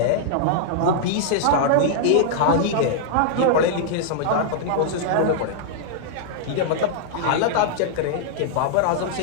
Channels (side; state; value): both; different; correlation -0.01